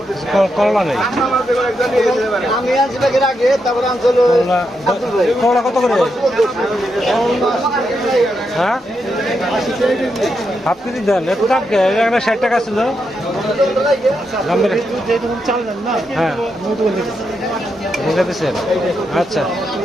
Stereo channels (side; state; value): both; normal; correlation 0.83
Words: করলা নেই আমি আনছি ব্যাগের আগে, তারপরে আনছি হলো আব্দুল ভাই। করলা কত করে? হ্যাঁ হাফ কেজি দেন, এত দাম কে? এখানে 60 টাকা ছিল। দাম বেড়ে চাল দেন না, হ্যাঁ বুঝে দিচ্ছেন। আচ্ছা